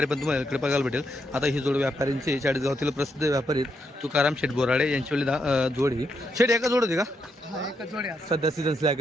पण तुम्हाला इकडे बघायला भेटेल. आता ही जोड व्यापाऱ्यांची चाळीसगावातील प्रसिद्ध व्यापारी तुकाराम शेठ बोराडे यांची वेळी जोडी. शेठ एका जोड होती का? सध्या सीझन स्लॅग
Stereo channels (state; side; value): normal; both; correlation 0.80